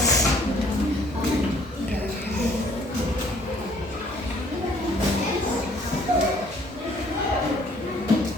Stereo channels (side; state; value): both; normal; correlation 0.60